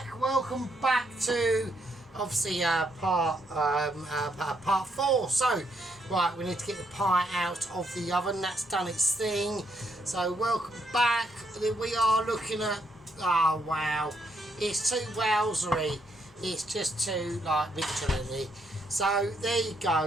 back to obviously part 4. So, right, we need to get the pie out of the oven. That's done its thing. So, welcome back. We are looking at, oh wow, it's too wowzery. It's just too like Michelin-y. So there you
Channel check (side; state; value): both; normal; correlation 0.74